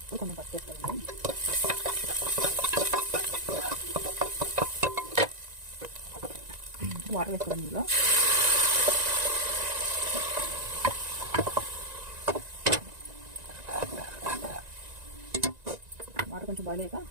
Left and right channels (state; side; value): late; left; 1.9 ms